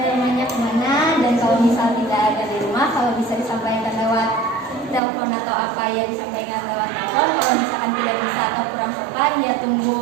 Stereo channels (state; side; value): drops out; left; at 5.0 s